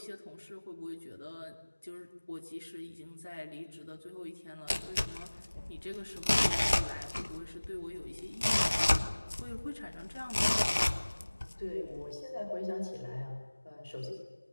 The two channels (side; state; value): both; inverted; correlation -1.00